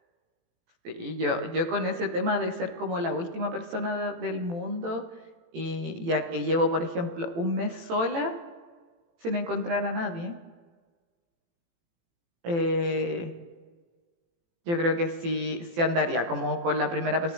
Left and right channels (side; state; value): left; late; 18 ms